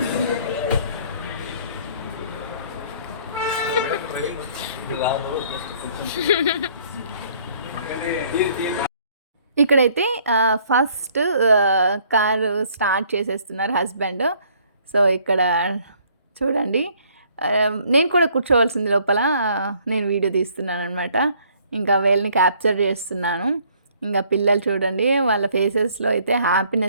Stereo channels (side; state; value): both; inverted; correlation -0.61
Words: ఇక్కడైతే ఫస్ట్ కారు స్టార్ట్ చేసేస్తున్నారు హస్బెండ్. సో ఇక్కడ చూడండి, నేను కూడా కూర్చోవలసింది లోపల, నేను వీడియో తీస్తున్నాను అనమాట. ఇంకా వీళ్ళని క్యాప్చర్ చేస్తున్నాను. ఇంకా పిల్లలు చూడండి, వాళ్ళ ఫేసెస్లో అయితే